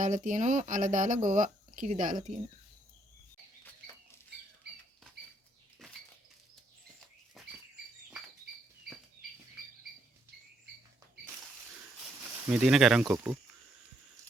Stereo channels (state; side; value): normal; both; correlation 0.71